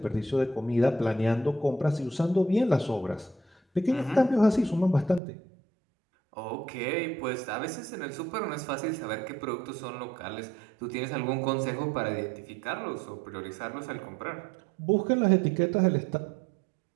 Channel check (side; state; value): left; drops out; at 5.2 s